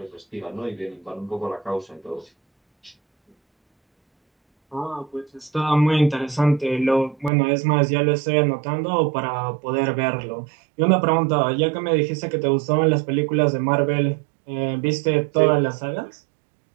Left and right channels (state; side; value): drops out; left; at 7.3 s